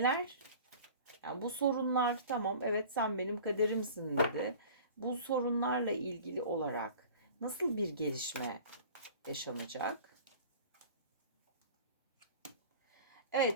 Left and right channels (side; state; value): both; inverted; correlation -0.42